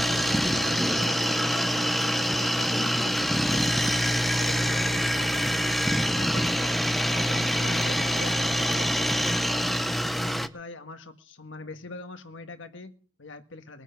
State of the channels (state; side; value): normal; both; correlation 0.94